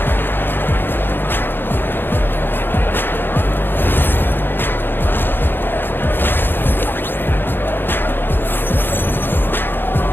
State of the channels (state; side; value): late; right; 0.099 ms